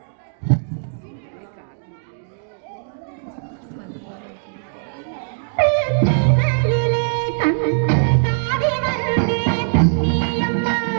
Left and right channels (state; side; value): silent; left; digital silence